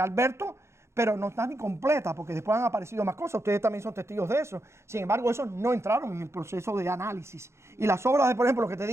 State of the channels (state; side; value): late; left; 0.13 ms